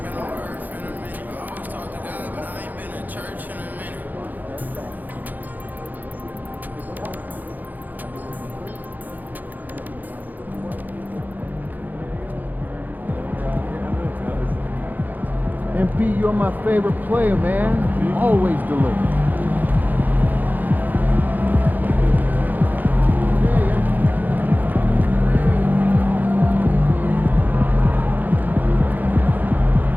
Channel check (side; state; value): left; late; 0.084 ms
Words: MP, you're my favorite player, man. You always deliver.